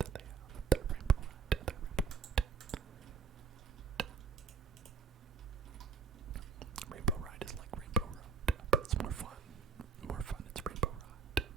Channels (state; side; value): quieter; left; 5.3 dB